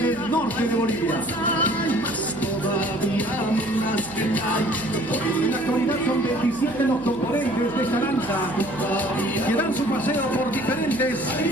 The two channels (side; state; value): right; noise; hum, 20 dB below the sound